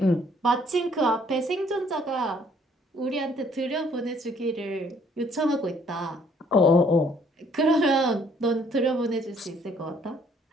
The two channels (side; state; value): both; normal; correlation 0.63